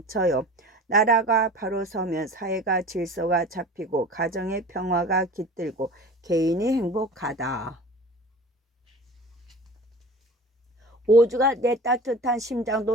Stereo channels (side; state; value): both; normal; correlation 0.38